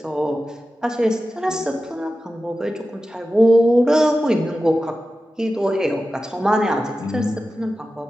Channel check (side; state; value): both; normal; correlation 0.93